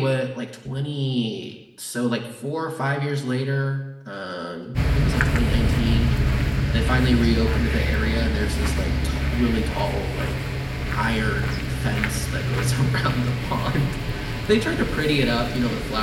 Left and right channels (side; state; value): both; identical; correlation 1.00